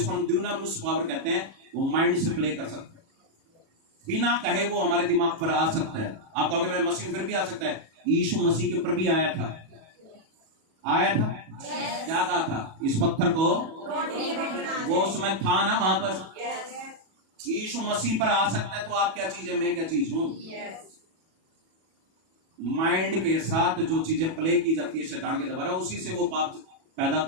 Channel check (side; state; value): left; late; 37 ms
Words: हम ड्यूनामिस पावर कहते हैं, वो माइंड से प्ले कर सकता है, बिना कहे वो हमारे दिमाग पर आ सकता है। आप कहोगे मैं मसीह फिर भी आ सकता है, यीशु मसीह के ऊपर भी आया था, आया था। क्या कहा था? इस पत्थर को, वो उसमें था ना वहां पर। यीशु मसीह पर आ सकता है तो आप क्या चीज है, मैं क्या चीज हूं। माइंड के साथ जो चीजें प्ले की जाती है शैतान के द्वारा, उसी से वो पाप पैदा